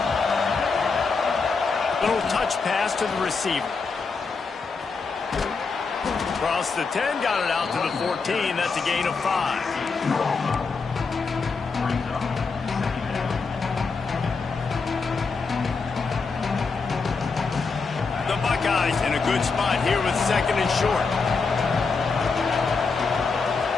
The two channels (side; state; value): right; quieter; 4.6 dB